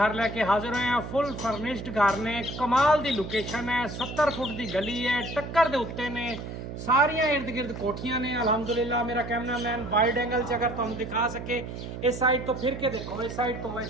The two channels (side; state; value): right; noise; hum, 8 dB below the sound